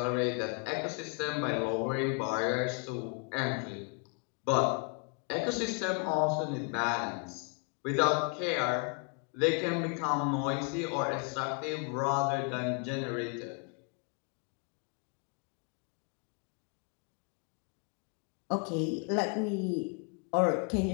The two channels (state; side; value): quieter; right; 36.8 dB